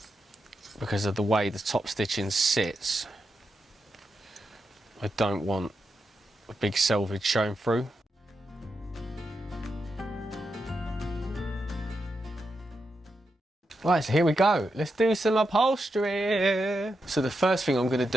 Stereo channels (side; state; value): both; normal; correlation 0.86